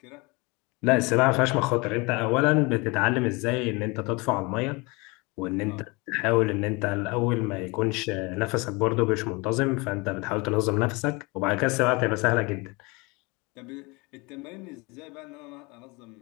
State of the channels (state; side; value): quieter; right; 26.7 dB